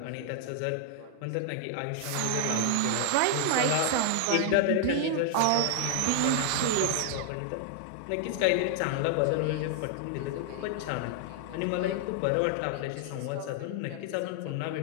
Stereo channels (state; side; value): different; both; correlation 0.00